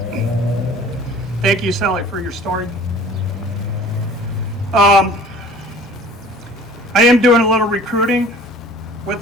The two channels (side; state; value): both; normal; correlation 0.48